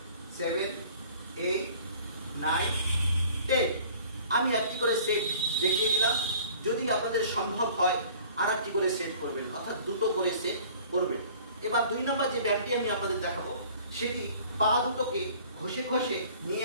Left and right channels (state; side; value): inverted; both; correlation -0.50